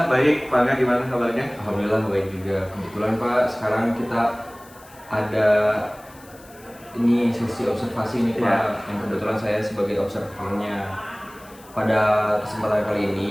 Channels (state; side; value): noise; left; hiss, 24 dB below the sound